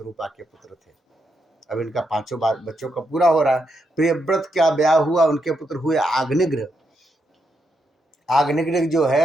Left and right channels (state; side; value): normal; both; correlation 0.81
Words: के पुत्र थे। अब इनका पांचों बार बच्चों का पूरा हो रहा है। प्रियव्रत का ब्याह हुआ, उनके पुत्र हुए आग्निग्र। आग्निग्र जो